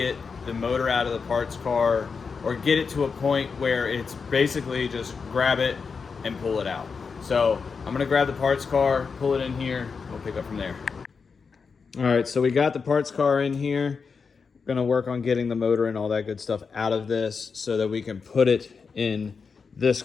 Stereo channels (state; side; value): quieter; right; 5.3 dB